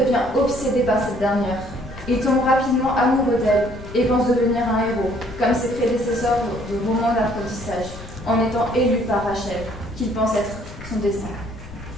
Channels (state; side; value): noise; left; rumble, 15 dB below the sound